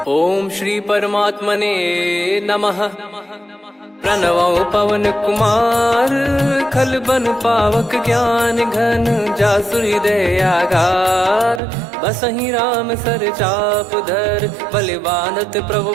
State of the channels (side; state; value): left; drops out; at 11.6 s